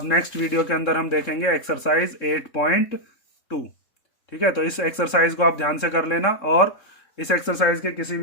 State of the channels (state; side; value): late; right; 3.7 ms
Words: नेक्स्ट वीडियो के अंदर हम देखेंगे एक्सरसाइज 8.2। ठीक है, तो इस एक्सरसाइज को आप ध्यान से कर लेना, और इस एक्सरसाइज के किसी